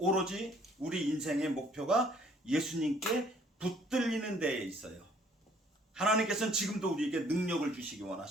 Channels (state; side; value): normal; both; correlation 0.60